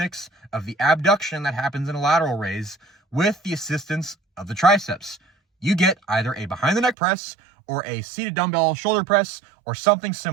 of the abduction that happens in a lateral raise with the assistance of the triceps? You get either a behind the neck press or a seated dumbbell shoulder press or something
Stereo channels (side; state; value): left; drops out; at 7.0 s